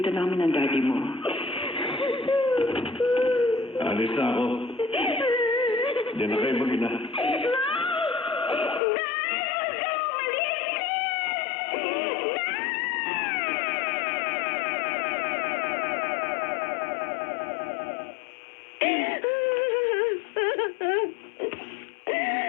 namin ng daddy mo. Alis na ako. Diyan na kayo mag-ina.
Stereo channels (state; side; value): drops out; right; at 8.8 s